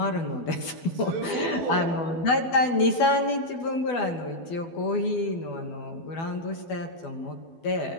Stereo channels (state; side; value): late; right; 12 ms